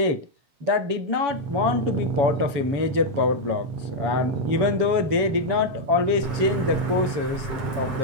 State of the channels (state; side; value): late; left; 7.1 ms